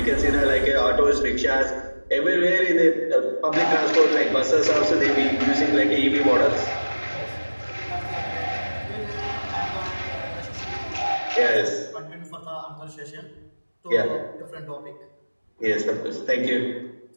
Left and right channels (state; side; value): inverted; both; correlation -1.00